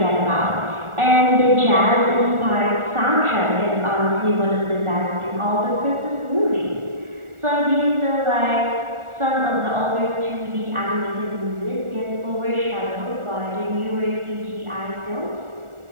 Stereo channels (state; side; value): late; left; 1.4 ms